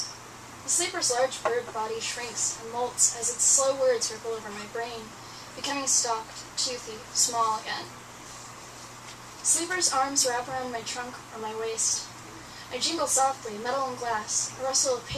The sleeper's large bird body shrinks and molts as its slow words ripple over my brain, becoming stalked, toothy, small again. The sleeper's arms wrap around my trunk or my waist. I jingle softly, metal and glass, a rustle of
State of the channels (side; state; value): both; identical; correlation 1.00